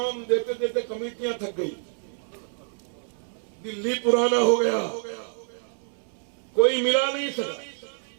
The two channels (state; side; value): silent; left; 60 dB below the other